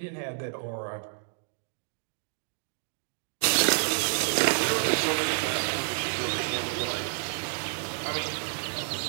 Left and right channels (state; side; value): silent; left; digital silence